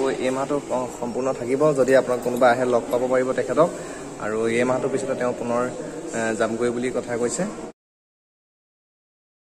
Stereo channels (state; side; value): identical; both; correlation 1.00